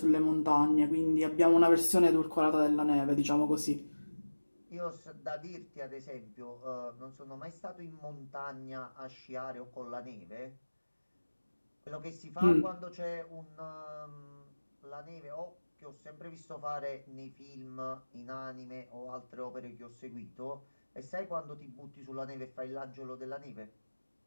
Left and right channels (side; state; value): both; inverted; correlation -1.00